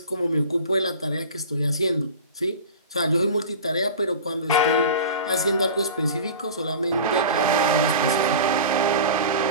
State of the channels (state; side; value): inverted; both; correlation -0.35